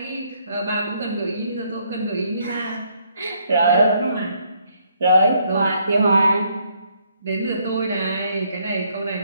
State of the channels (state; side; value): inverted; both; correlation -0.70